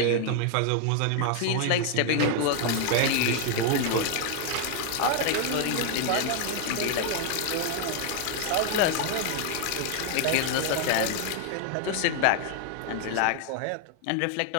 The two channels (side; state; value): both; different; correlation 0.00